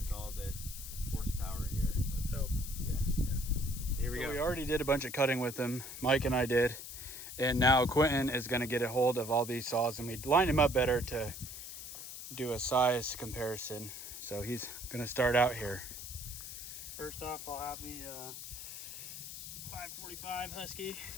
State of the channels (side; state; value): left; noise; hiss, 10 dB below the sound